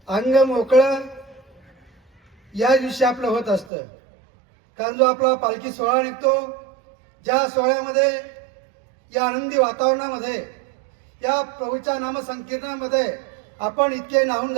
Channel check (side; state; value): left; drops out; at 3.7 s